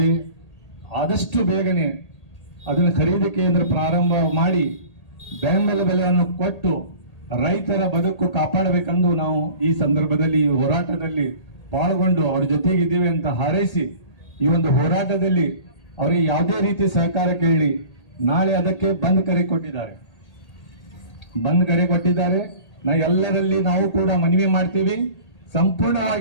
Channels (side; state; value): right; late; 1.8 ms